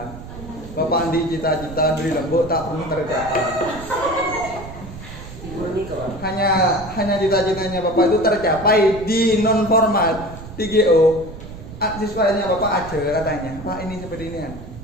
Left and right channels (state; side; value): noise; right; rumble, 13 dB below the sound